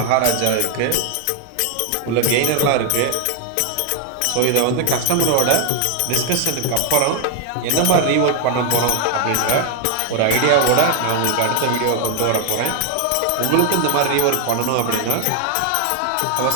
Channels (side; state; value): both; different; correlation 0.00